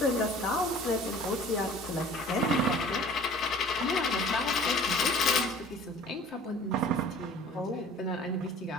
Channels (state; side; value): normal; both; correlation 0.48